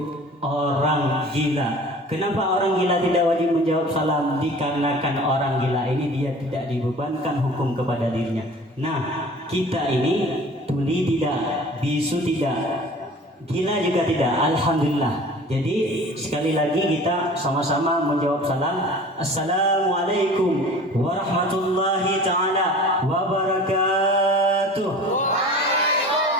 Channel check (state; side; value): normal; both; correlation 0.43